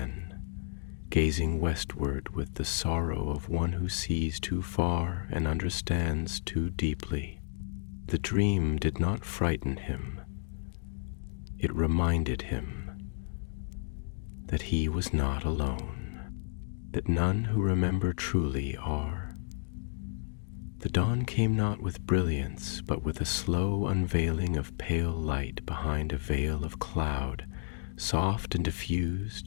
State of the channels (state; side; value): silent; right; digital silence